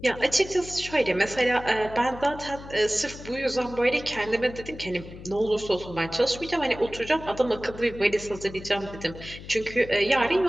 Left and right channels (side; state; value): left; noise; hum, 14 dB below the sound